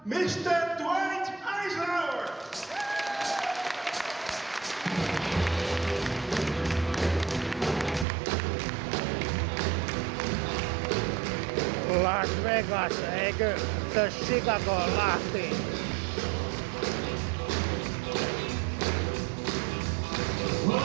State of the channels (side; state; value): left; drops out; at 8.1 s